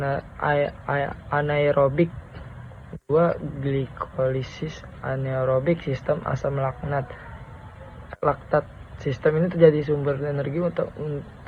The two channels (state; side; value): identical; both; correlation 1.00